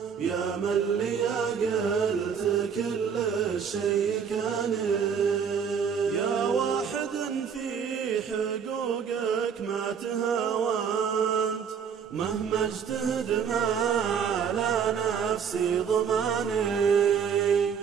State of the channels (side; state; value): left; quieter; 7.1 dB